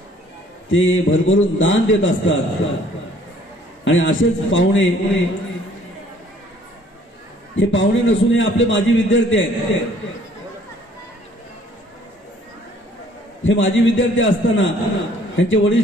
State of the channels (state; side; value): normal; both; correlation 0.58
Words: ते भरभरून दान देत असतात. आणि असेच पाहुणे, हे पाहुणे नसून हे आपले माजी विद्यार्थी आहेत. हे माजी विद्यार्थी असताना त्यांचे वडील